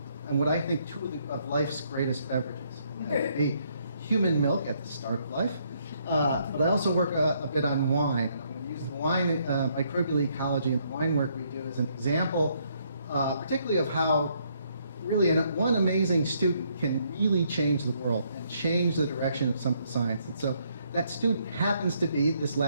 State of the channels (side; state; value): both; inverted; correlation -0.71